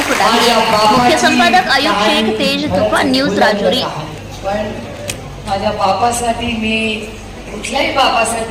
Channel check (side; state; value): both; identical; correlation 1.00